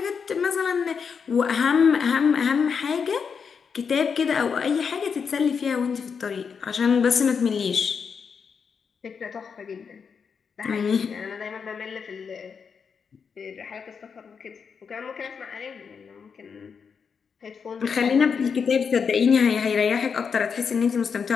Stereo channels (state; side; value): quieter; right; 6.2 dB